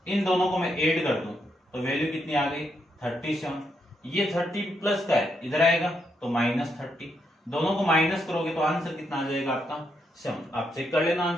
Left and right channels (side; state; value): both; normal; correlation 0.79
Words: इन दोनों को मैं ऐड कर दूं तो वैल्यू कितनी आ गई 37। ये 30 प्लस का है इधर आएगा तो -30, दोनों को माइनस करोगे तो आंसर कितना आ जाएगा आपका 7। आप चेक कर लेना